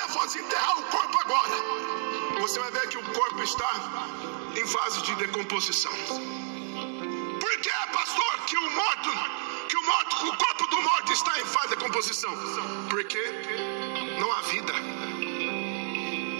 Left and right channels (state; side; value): silent; left; digital silence